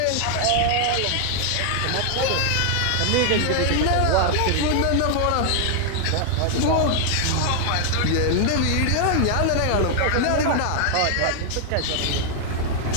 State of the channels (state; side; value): different; both; correlation 0.00